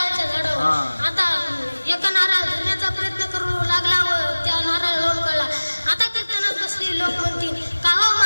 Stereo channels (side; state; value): both; inverted; correlation -1.00